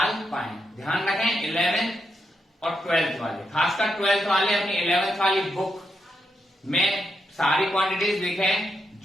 पाए। ध्यान रखें 11th और 12th वाले, खासकर 12th वाले अपनी 11th वाली बुक में सारी क्वांटिटीज लिखें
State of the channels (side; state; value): both; normal; correlation 0.83